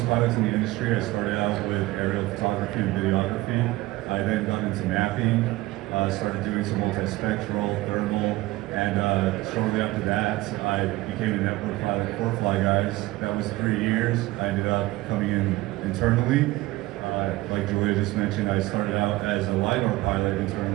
pilots in the industry, I started out with aerial photography and videography. I then got into mapping, started doing some multispectral, thermal, and shortly after that, I became a network pilot for FlyGuys. That was 3 years. I ended up coming in internally. Like Julia just mentioned, I started out as a LiDAR pilot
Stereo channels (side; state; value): left; quieter; 18.7 dB